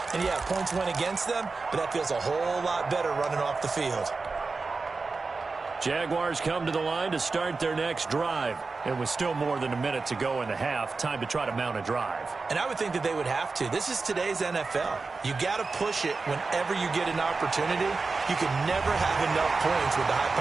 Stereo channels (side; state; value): left; quieter; 4.1 dB